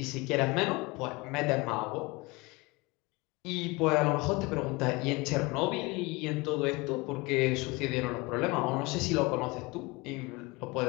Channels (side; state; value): right; quieter; 24.8 dB